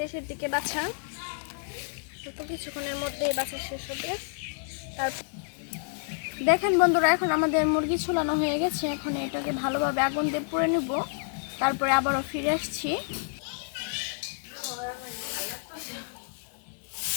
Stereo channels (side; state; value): right; silent; digital silence